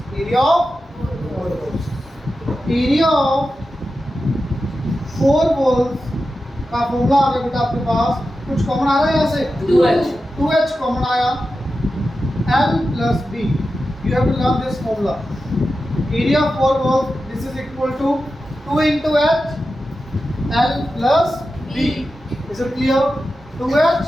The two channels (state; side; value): normal; both; correlation 0.92